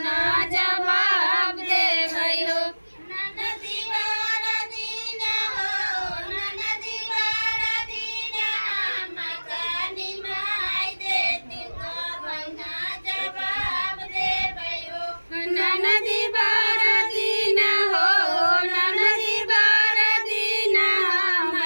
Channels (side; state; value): both; inverted; correlation -1.00